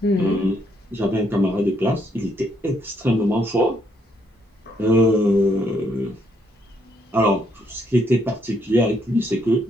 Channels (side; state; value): both; normal; correlation 0.72